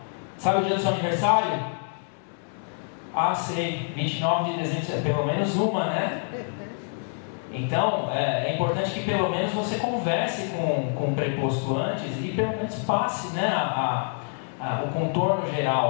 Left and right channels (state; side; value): silent; right; 61 dB below the other